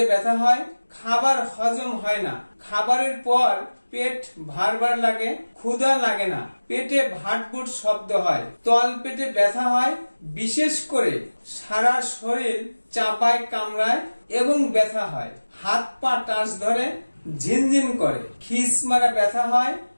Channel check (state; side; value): inverted; both; correlation -1.00